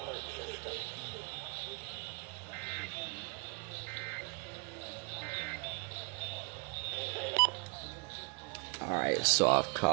System. Alright, so I've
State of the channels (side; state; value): left; quieter; 31.0 dB